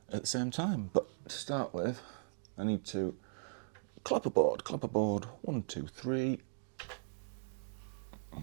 at the same time. But to start with, I need to clap a board, 1, 2, 3.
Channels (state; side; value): silent; left; digital silence